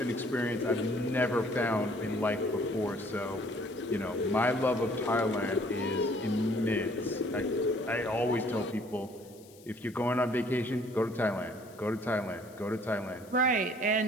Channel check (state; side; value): noise; left; hiss, 24 dB below the sound